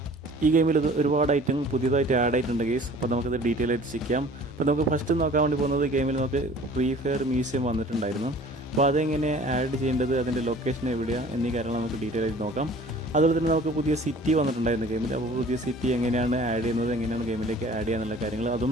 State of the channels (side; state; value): both; normal; correlation 0.48